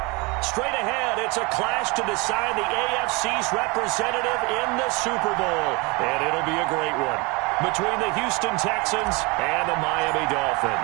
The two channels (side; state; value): left; quieter; 27.4 dB